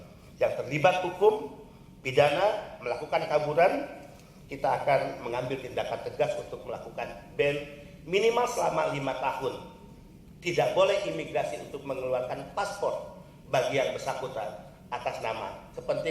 yang terlibat hukum, pidana, melakukan kaburan, kita akan mengambil tindakan tegas untuk melakukan ban minimal selama 5 tahun. Tidak boleh imigrasi untuk mengeluarkan paspor bagi yang bersangkutan atas nama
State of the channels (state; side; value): identical; both; correlation 1.00